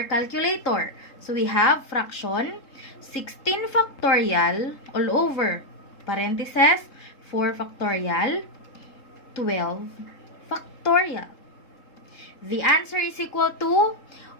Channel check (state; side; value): late; right; 3.7 ms